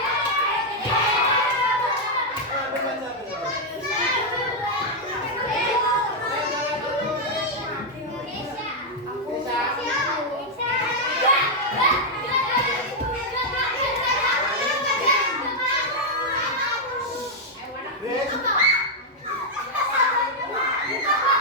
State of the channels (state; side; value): normal; both; correlation -0.02